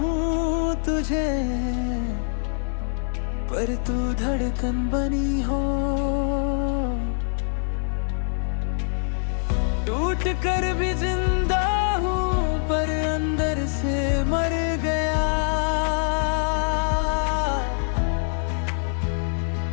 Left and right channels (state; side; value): silent; right; digital silence